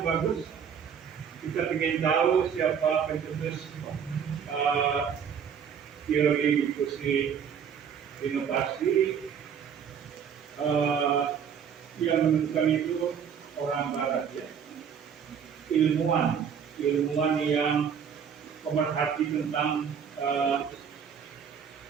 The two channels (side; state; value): left; quieter; 7.5 dB